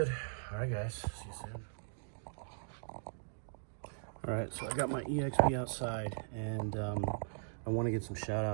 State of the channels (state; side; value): silent; left; digital silence